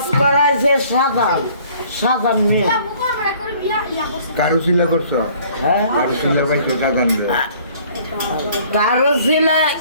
করাইছে সাধারণ মেয়ে কারুশিলা করছো কারুশিলা পাইছো সাধারণ কারুশিলা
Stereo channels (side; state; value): both; inverted; correlation -0.56